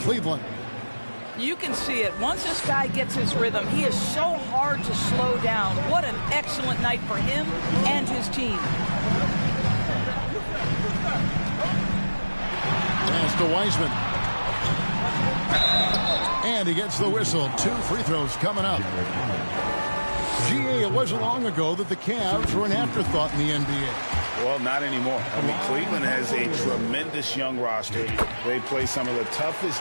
You can see it. Once this guy gets his rhythm, he is so hard to slow down. What an excellent night for him and his team. Pass to Wiseman. And he gets the whistle. 2 free throws coming up. GA, it wasn't long ago that the Cavs were an afterthought in the NBA. Well, not anymore. I mean, Cleveland has a tremendous young roster. They play some of the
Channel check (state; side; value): inverted; both; correlation -1.00